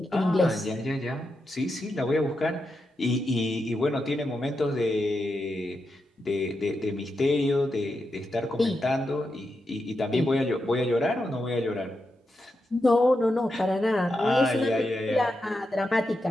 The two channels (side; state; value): both; normal; correlation 0.86